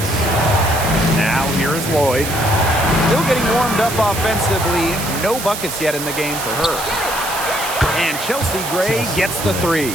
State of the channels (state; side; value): noise; right; hiss, 7 dB below the sound